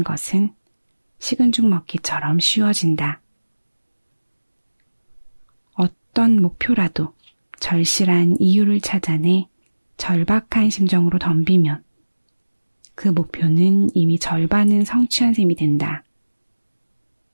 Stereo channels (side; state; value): both; inverted; correlation -1.00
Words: 것은 식은 죽 먹기처럼 쉬워진다. 어떤 목표라도 절실한 이유를 찾아내 절박한 심정으로 덤비면 그 목표는 이미 절반은 성취한 셈이 된다.